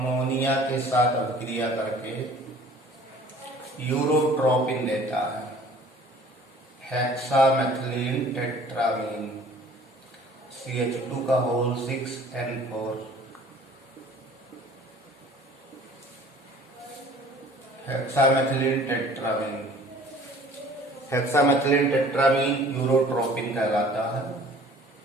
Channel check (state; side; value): normal; both; correlation 0.50